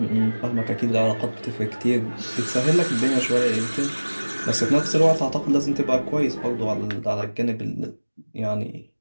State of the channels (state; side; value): inverted; both; correlation -1.00